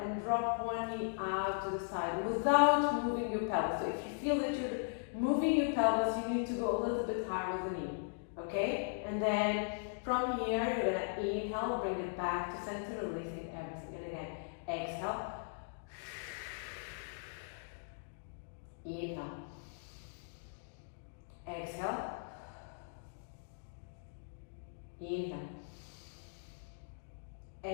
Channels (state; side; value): silent; right; digital silence